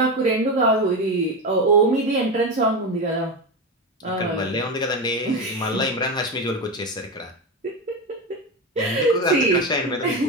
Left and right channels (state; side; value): normal; both; correlation 0.17